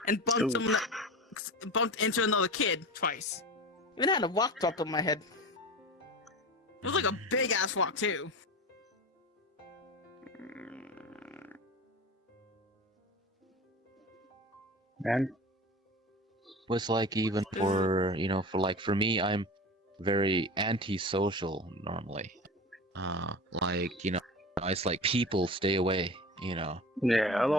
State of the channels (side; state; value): both; normal; correlation 0.31